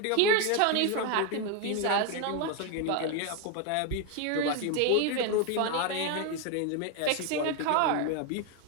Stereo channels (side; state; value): both; different; correlation 0.01